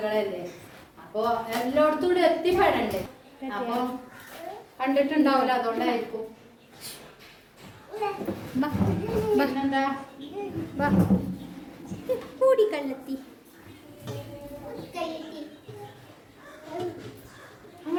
അപ്പൊ എല്ലായിടത്തും കൂടെ എത്തിപ്പെടണ്ടേ. അപ്പൊ കണ്ടിട്ടുണ്ടാവില്ല, അതുകൊണ്ടായിരിക്കും. പിന്നെന്താ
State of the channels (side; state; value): both; identical; correlation 1.00